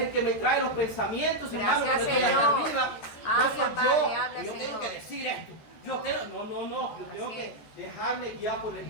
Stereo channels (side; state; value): right; late; 14 ms